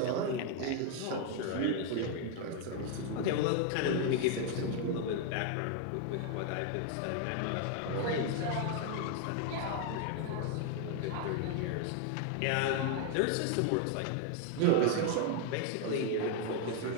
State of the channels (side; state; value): both; different; correlation 0.00